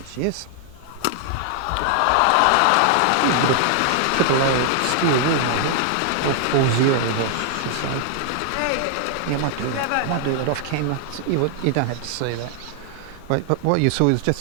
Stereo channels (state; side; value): different; both; correlation 0.00